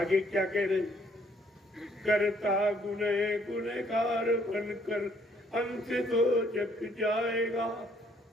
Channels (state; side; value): normal; both; correlation 0.65